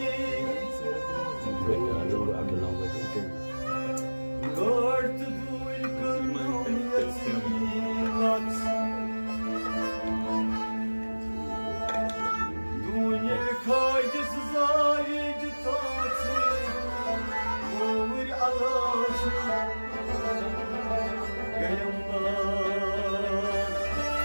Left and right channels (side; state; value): both; inverted; correlation -1.00